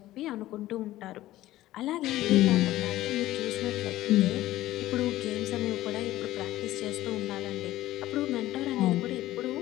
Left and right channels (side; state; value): right; quieter; 15.6 dB